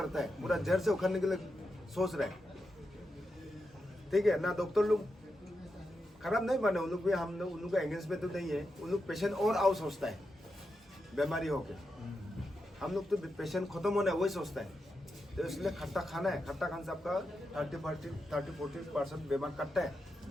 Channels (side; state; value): both; normal; correlation 0.87